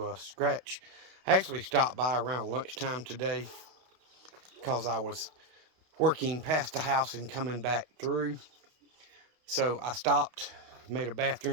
scratch. I actually stopped by around lunchtime today because I was working past the house and coming back through. So I stopped, made a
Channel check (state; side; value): late; left; 32 ms